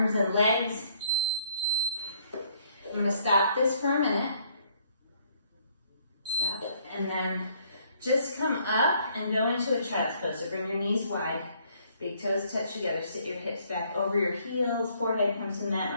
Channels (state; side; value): inverted; both; correlation -0.65